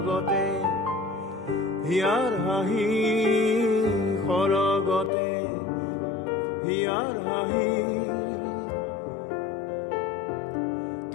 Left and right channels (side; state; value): right; drops out; at 5.1 s